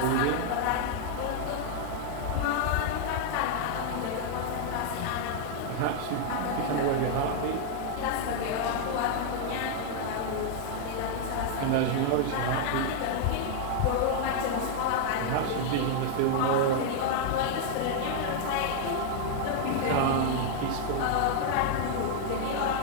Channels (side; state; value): both; different; correlation 0.00